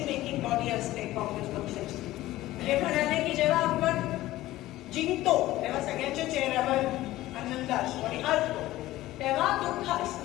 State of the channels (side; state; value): right; quieter; 16.2 dB